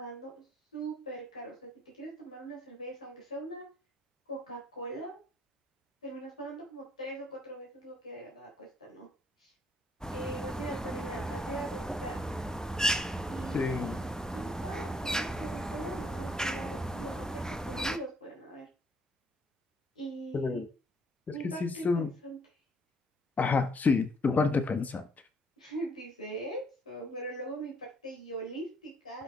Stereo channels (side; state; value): both; normal; correlation 0.68